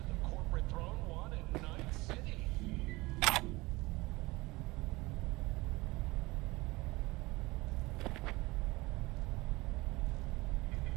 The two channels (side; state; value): left; quieter; 21.9 dB